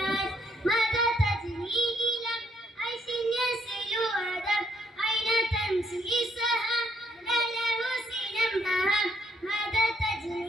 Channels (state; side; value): normal; both; correlation 0.70